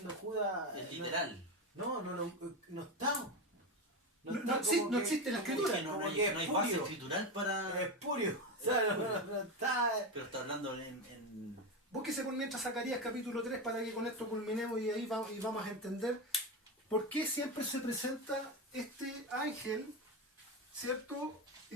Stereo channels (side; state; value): both; normal; correlation 0.15